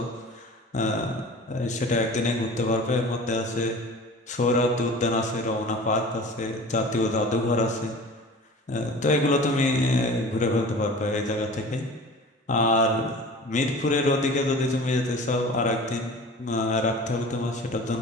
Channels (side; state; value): both; normal; correlation 0.40